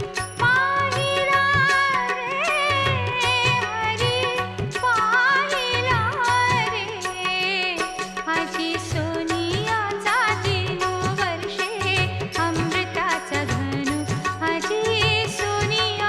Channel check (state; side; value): identical; both; correlation 1.00